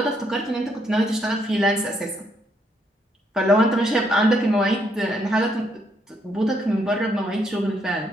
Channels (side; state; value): both; normal; correlation 0.73